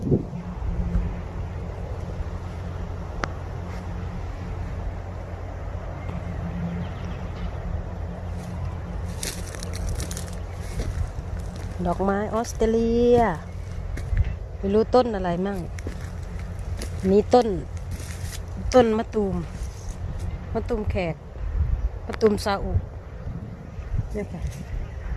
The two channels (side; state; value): both; identical; correlation 1.00